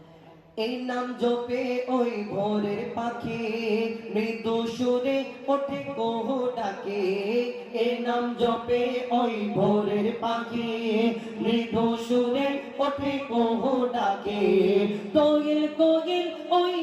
এই নাম জপে ওই ভোরের পাখি মৃদু সুরে ওঠে কুহু ডাকে। এই নাম জপে ওই ভোরের পাখি মৃদু সুরে ওঠে কুহু ডাকে। দোয়েল কোয়েল ওই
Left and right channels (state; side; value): identical; both; correlation 1.00